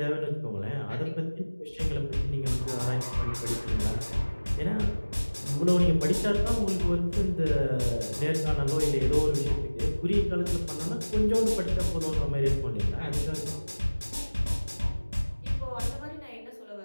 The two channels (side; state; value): both; inverted; correlation -1.00